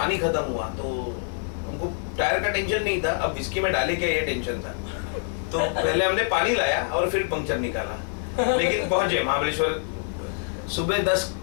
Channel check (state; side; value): silent; right; 61 dB below the other